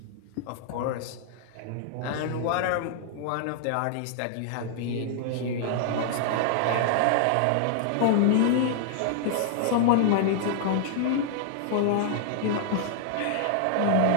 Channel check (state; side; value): different; both; correlation -0.01